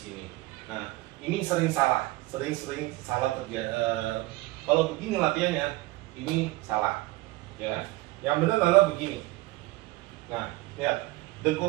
Nah, ini sering salah, sering salah terjadi. Kalau begini latihannya, ini salah, ya. Yang benar adalah begini. Nah, lihat,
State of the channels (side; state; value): left; quieter; 19.7 dB